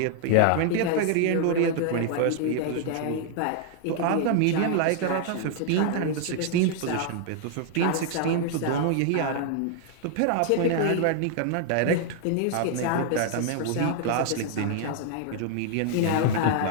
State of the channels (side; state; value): both; different; correlation 0.00